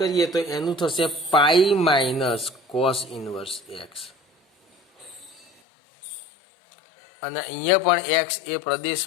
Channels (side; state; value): right; drops out; at 5.5 s